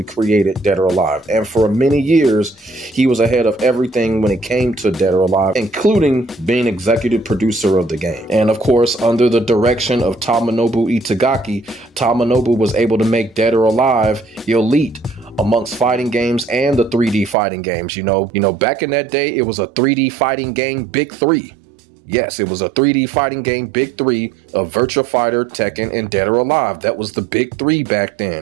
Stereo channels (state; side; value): drops out; left; at 17.4 s